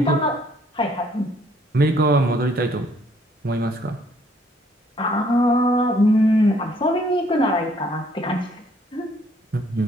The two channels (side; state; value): both; normal; correlation 0.64